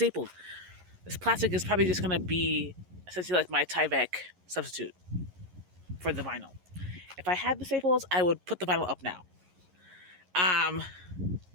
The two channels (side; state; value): left; late; 11 ms